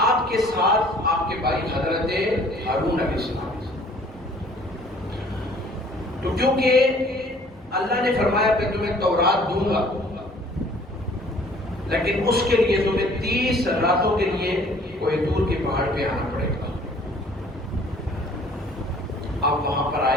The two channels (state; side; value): normal; both; correlation 0.55